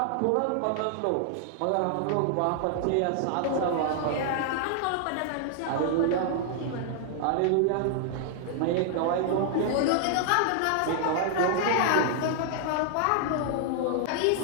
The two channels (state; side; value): different; both; correlation -0.01